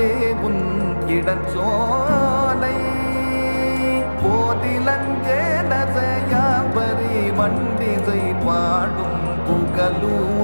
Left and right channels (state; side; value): inverted; both; correlation -1.00